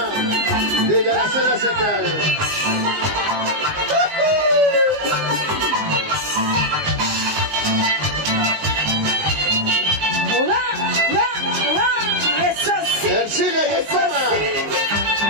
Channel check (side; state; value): left; late; 19 ms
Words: desde la Selva Central. Eso sí. Ercilia y el Eso Poma. sí.